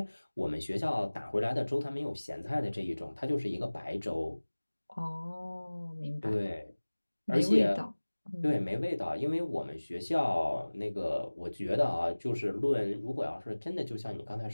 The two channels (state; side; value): inverted; both; correlation -1.00